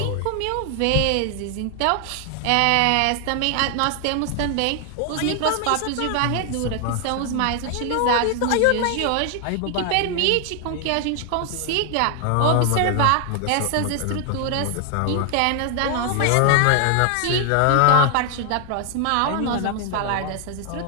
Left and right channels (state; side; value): different; both; correlation 0.00